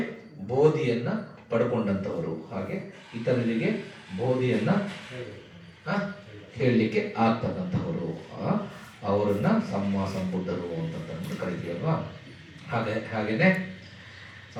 ಬೋಧಿಯನ್ನು ಪಡ್ಕೊಂಡಂಥವರು, ಹಾಗೆ ಇತರರಿಗೆ ಬೋಧಿಯನ್ನು ಹೇಳಲಿಕ್ಕೆ ಆಗ್ತಕ್ಕಂಥವರು, ಅವರನ್ನ ಸಂಬುದ್ಧರು ಅಂತ ಕರಿತೀವಲ್ವಾ? ಹಾಗೇನೆ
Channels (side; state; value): both; identical; correlation 1.00